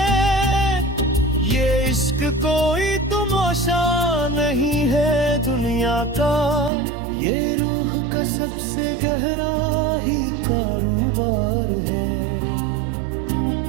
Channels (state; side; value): drops out; left; at 6.7 s